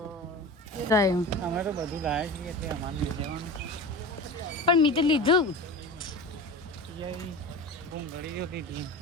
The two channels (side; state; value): both; normal; correlation 0.31